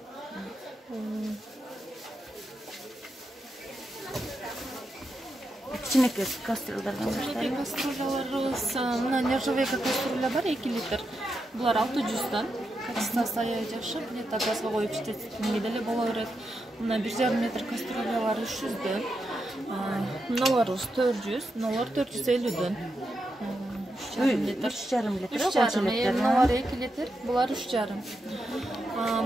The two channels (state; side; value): normal; both; correlation 0.86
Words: Кичинекей кастрюльдардан баштайбыз. Кастрюляларыбыз мына нержавейка кастрюля бар 2 литр. Булар 600'dan. Качествосы аябай жакшы. Плита газга коюп иштетингенге деле боло берет. Мына 1,5 метр кастрюлялар 300'dan. Мыналарыбыз 400, мыналар 450'dan. 3,5 литр. 3,5. Мыналар 2 литр, булар 3,5.